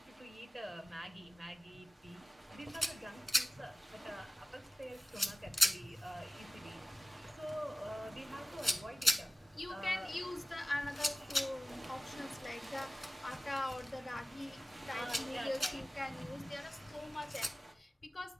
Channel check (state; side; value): normal; both; correlation 0.97